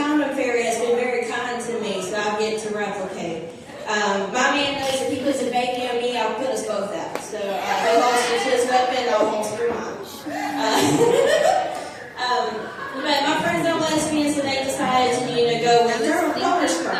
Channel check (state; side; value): identical; both; correlation 1.00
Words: fairy has been very kind to me, so I'll get to replicate. My man knows if he puts a baby on me, I'll put us both out. So he holsters his weapon, I'll holster mine. But my friends are lesbians, so they decided to, go with donor